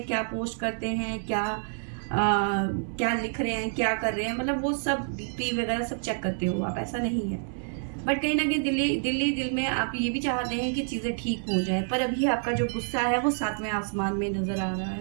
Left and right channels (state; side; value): silent; left; 59 dB below the other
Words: क्या पोस्ट करते हैं, क्या लिख रहे हैं, क्या कर रहे हैं, मतलब वो सब डीपी वगैरह सब चेक करते हो आप, ऐसा नहीं है। बट कहीं ना कहीं दिल में आप ये भी चाहते हैं कि चीज़ें ठीक हो जाए, पर अभी आपका जो गुस्सा है वो सातवें आसमान में नज़र आ रहा है।